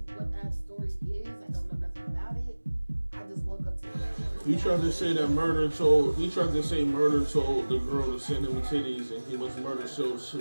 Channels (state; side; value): inverted; both; correlation -1.00